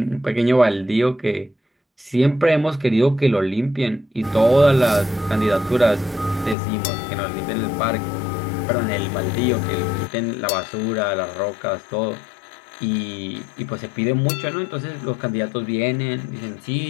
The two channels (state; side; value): drops out; right; at 6.6 s